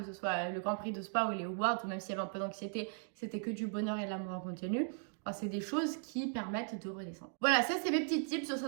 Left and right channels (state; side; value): silent; left; 53 dB below the other